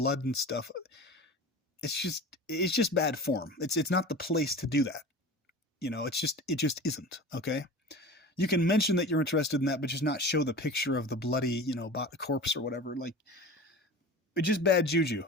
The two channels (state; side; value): normal; both; correlation 0.35